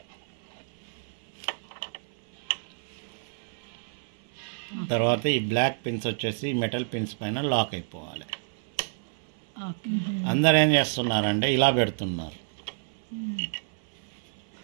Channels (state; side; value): silent; left; 56 dB below the other